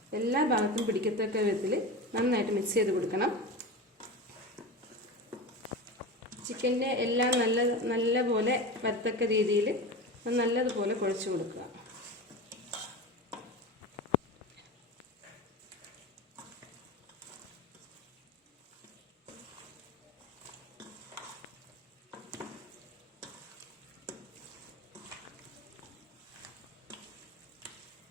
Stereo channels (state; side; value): normal; both; correlation 0.27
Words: എല്ലാ ഭാഗത്തും പിടിക്കത്തക്ക വിധത്തിൽ നന്നായിട്ട് മിക്സ് ചെയ്ത് കൊടുക്കണം. ചിക്കൻ്റെ എല്ലാം നല്ലപോലെ വരത്തക്ക രീതിയിൽ നല്ലതുപോലെ കുഴച്ച് കൊടുക്കുക.